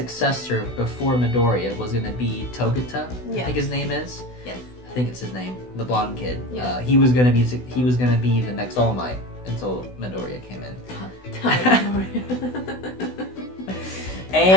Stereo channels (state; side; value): late; right; 16 ms